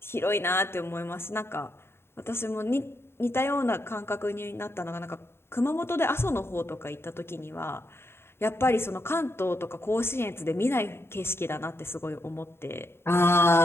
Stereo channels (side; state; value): right; late; 0.12 ms